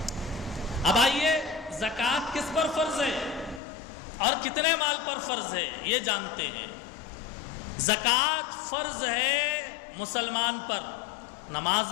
اب آئیے زکوٰۃ کس پر فرض ہے اور کتنے مال پر فرض ہے یہ جانتے ہیں۔ زکوٰۃ فرض ہے مسلمان پر، نماز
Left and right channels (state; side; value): drops out; right; at 3.6 s